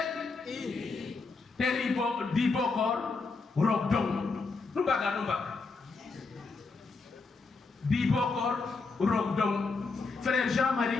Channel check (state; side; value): quieter; right; 4.1 dB